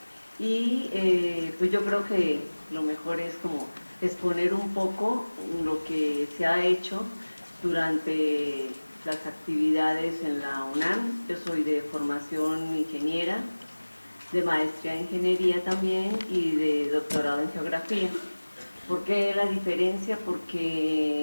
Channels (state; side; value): inverted; both; correlation -1.00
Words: y pues yo creo que lo mejor es como exponer un poco lo que se ha hecho durante las actividades en la UNAM. Yo soy de formación ingeniera, de maestría en ingeniería también y de doctorado en geografía. ¿Por qué la diferencia?